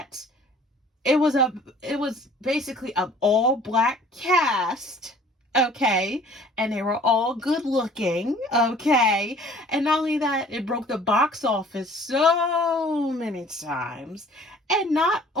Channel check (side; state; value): both; normal; correlation 0.52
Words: it was basically an all black cast, okay, and they were all good looking, okay, and not only that, it broke the box office so many times. And not